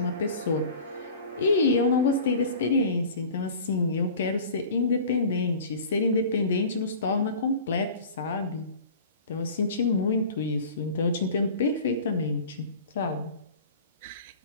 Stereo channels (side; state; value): both; inverted; correlation -0.41